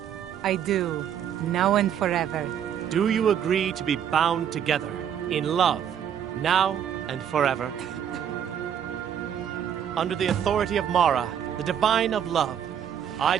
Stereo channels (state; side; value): quieter; left; 8.9 dB